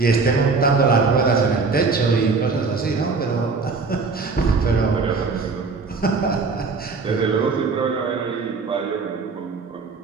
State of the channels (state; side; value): quieter; left; 4.4 dB